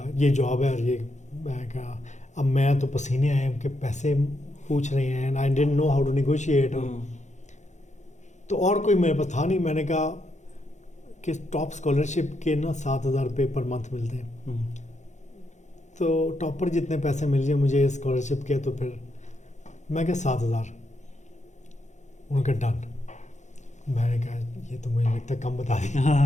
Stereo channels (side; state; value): right; late; 0.34 ms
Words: ये जॉब है और ये, मैं कहा अब मैं तो पसीने आए कि पैसे पूछ रहे हैं, and I didn't know how to negotiate, तो और कोई मेरे पास था नहीं। मैंने कहा कि टॉप स्कॉलरशिप के ना 7,000 रुपये पर मंथ मिलते हैं, तो टॉपर जितने पैसे मिल जाए मुझे स्कॉलरशिप के, तो फिर मैं क्या 7,000, उनका डन। मैंने कहा ये तो मुझे लगता है कम बता